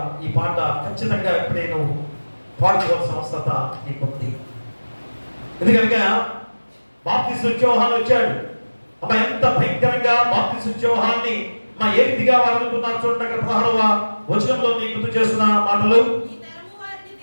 ఈ పాట ఖచ్చితంగా ఇప్పుడే నువ్వు పాడుకోవాల్సిన అవసరత నీకుంది. ఎందుకనగా బాప్తిస్మ యోహాను వచ్చాడు. ఎంత భయంకరంగా బాప్తిస్మ యోహాన్ని ఏ రీతిగా వారు అనుకున్నారు చూడండి. అక్కడ 16వ వచనంలో నీకు గుర్తు చేస్తున్న మాటలు,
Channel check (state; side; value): inverted; both; correlation -1.00